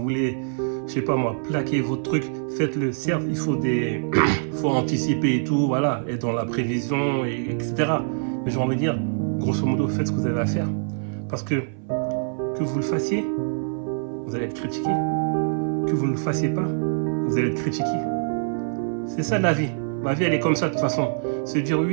voulez, je sais pas moi, plaquer votre truc, faites-le. Certes, il faut faut anticiper et tout, voilà, être dans la prévision, etc. Mais j'ai envie de dire, grosso modo, faites ce que vous avez à faire. Parce que vous le fassiez, vous allez être critiqué. Que vous ne le fassiez pas, vous allez être critiqué. C'est ça la vie. La vie, elle est comme ça de toute façon. Se dire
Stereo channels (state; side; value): silent; left; 57 dB below the other